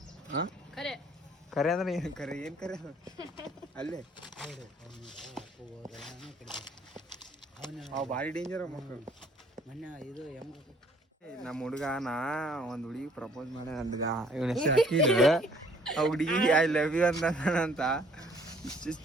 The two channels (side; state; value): both; normal; correlation 0.59